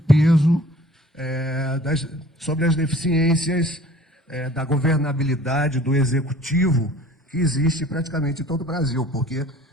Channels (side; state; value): both; normal; correlation 0.49